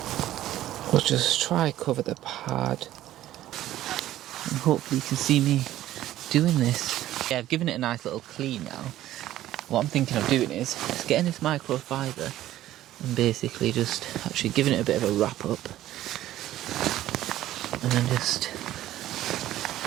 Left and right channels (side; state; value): left; quieter; 13.8 dB